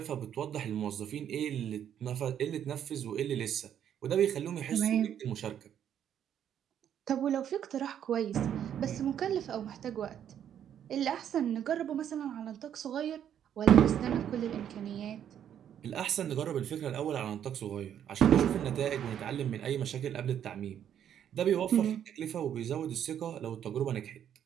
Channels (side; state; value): left; quieter; 9.6 dB